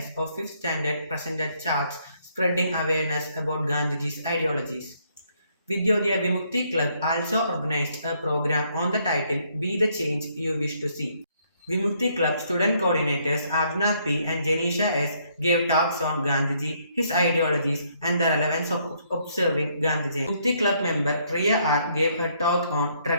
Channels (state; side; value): inverted; both; correlation -0.70